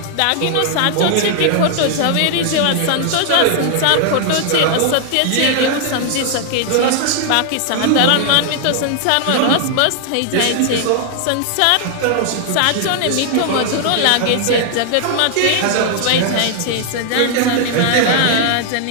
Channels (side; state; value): both; different; correlation 0.00